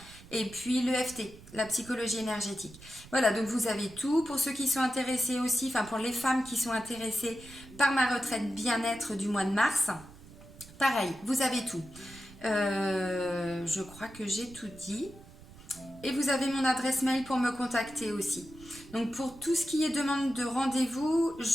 et puis l'EFT, la psychologie énergétique. Voilà, donc vous avez tout. Pour ceux qui sont intéressés aussi, enfin pour les femmes qui sont intéressées par ma retraite bien-être du mois de mars, pareil, vous avez tout. Je crois que j'ai tout dit. Et vous avez mon adresse mail pour me contacter aussi. Donc pour tout ce qui est demande de rendez-vous,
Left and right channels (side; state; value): right; noise; rumble, 19 dB below the sound